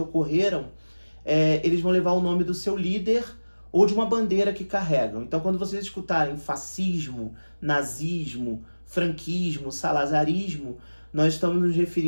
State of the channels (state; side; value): inverted; both; correlation -1.00